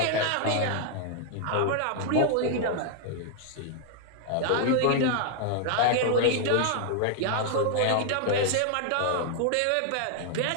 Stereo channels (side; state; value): both; different; correlation 0.00